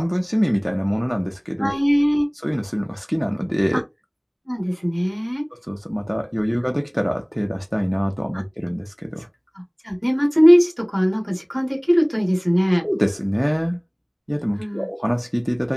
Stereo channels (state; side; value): identical; both; correlation 1.00